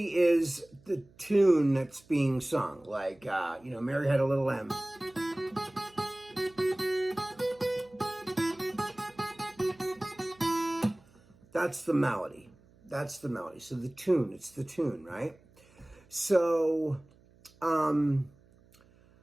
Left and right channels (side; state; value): right; noise; hum, 28 dB below the sound